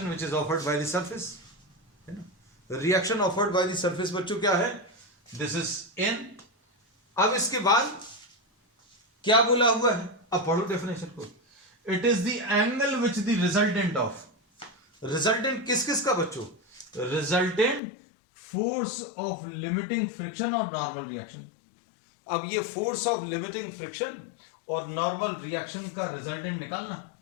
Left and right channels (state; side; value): drops out; right; at 17.8 s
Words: which is offered by the surface, है ना। Reaction offered by the surface बच्चों क्या है? This is an. अब इसके बाद क्या बोला हुआ है? अब पढ़ो डेफिनेशन को। It is the angle which the resultant of, resultant किस किस का बच्चों? Resultant force of limiting friction और नॉर्मल रिएक्शन। अब ये फोर्स ऑफ लिमिटिंग फ्रिक्शन और नॉर्मल रिएक्शन का रिजल्टेंट निकालना,